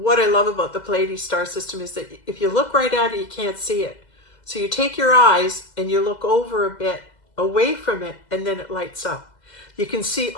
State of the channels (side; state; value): right; late; 2.0 ms